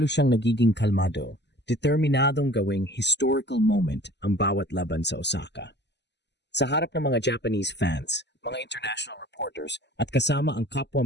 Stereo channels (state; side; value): late; right; 0.50 ms